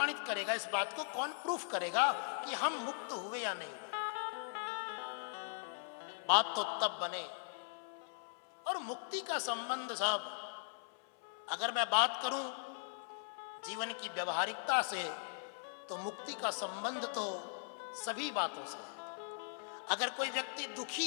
करेगा इस बात को, कौन प्रूफ करेगा कि हम मुक्त हुए या नहीं? बात तो तब बने। और मुक्ति का संबंध साहब, अगर मैं बात करूं जीवन की व्यवहारिकता से, तो मुक्ति का संबंध तो सभी बातों से है। अगर कोई व्यक्ति दुखी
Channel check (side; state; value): right; silent; 51 dB below the other